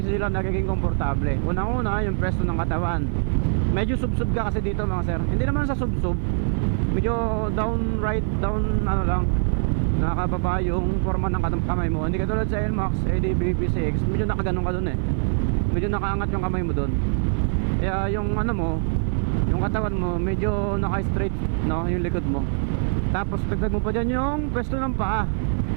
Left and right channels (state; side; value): silent; left; digital silence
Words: nagiging komportable. Unang-una yung pwesto ng katawan, medyo sub-sub ka kasi dito mga sir. Hindi naman sa sub-sub, medyo down ano lang, nakababa yung forma ng kamay mo. Hindi katulad sa NMAX, ADB, PCX, medyo nakaganon ka dun eh, medyo nakaangat yung kamay mo dun. Kaya yung ano mo, yung katawan mo medyo naka-straight, no, yung likod mo. Tapos dagdag mo pa dyan yung pwesto ng paa.